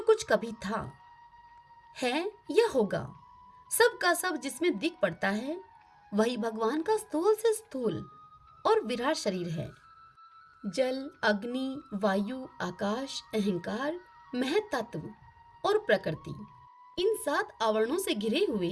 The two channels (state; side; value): identical; both; correlation 1.00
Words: कुछ कभी था, है या होगा, सब का सब जिसमें दिख पड़ता है, वही भगवान का स्थूल से स्थूल और विराट शरीर है। जल, अग्नि, वायु, आकाश, अहंकार, महत तत्व और प्रकृति, इन 7 आवरणों से घिरे